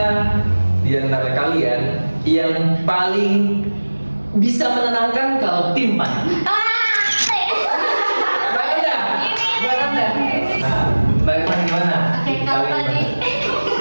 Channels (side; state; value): both; inverted; correlation -1.00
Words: di antara kalian yang paling bisa menenangkan kalau tim Mbak Anda? Nah, Mbak Anda gimana? Oke, kalau tadi